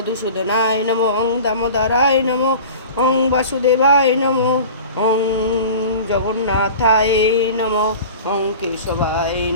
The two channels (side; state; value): both; inverted; correlation -0.38